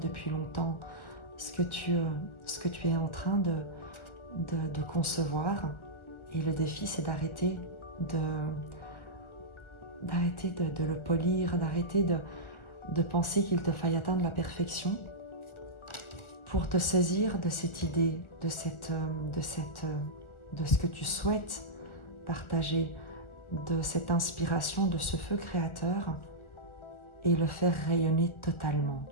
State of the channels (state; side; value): late; right; 1.4 ms